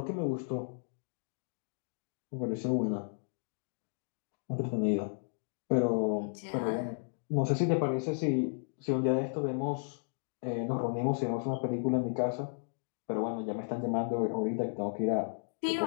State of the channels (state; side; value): silent; right; digital silence